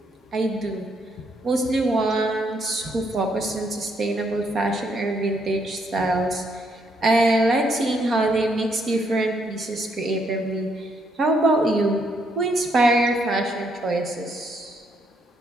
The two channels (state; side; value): normal; both; correlation 0.73